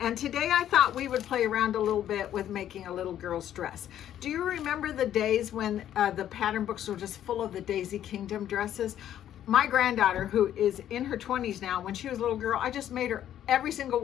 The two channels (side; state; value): right; quieter; 11.1 dB